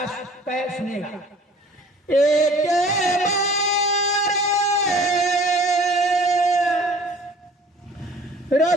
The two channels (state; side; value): normal; both; correlation 0.50